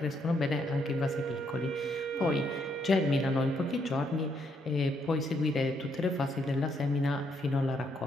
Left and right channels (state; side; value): normal; both; correlation 0.74